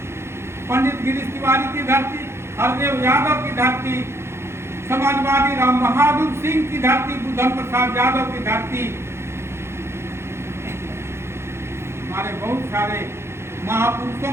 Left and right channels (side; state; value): left; late; 0.12 ms